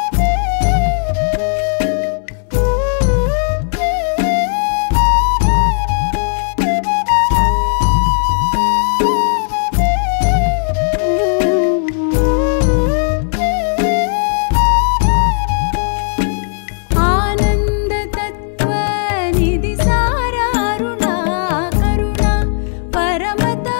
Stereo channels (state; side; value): silent; right; 63 dB below the other